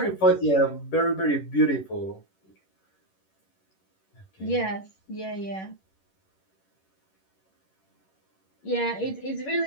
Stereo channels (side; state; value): right; late; 11 ms